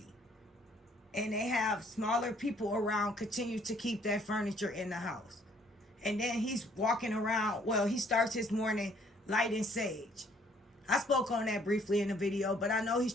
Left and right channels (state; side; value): normal; both; correlation 0.62